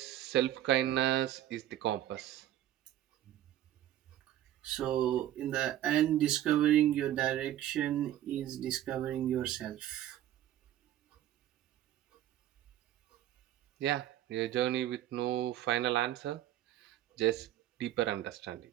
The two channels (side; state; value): left; quieter; 12.6 dB